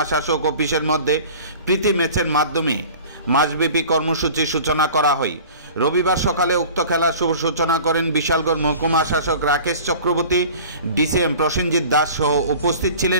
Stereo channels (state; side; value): inverted; both; correlation -0.42